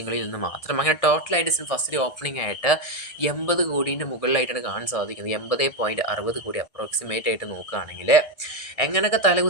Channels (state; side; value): late; right; 1.6 ms